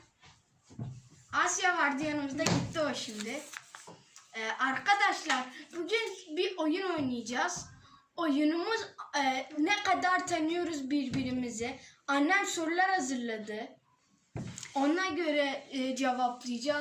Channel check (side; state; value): both; identical; correlation 1.00